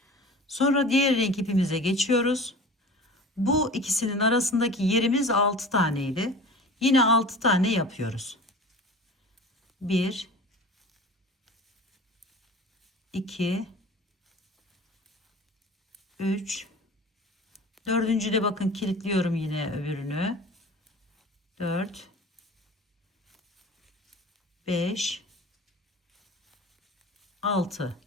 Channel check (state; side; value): normal; both; correlation 0.38